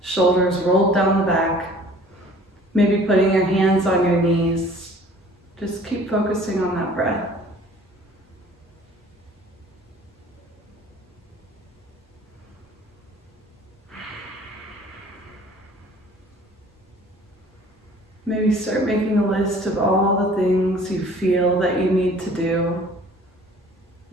shoulders rolled down the back. Maybe putting your hands on your knees. Just keep focusing on that breath. Maybe start making a list of all the things you feel that you need to do.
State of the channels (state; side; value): normal; both; correlation 0.51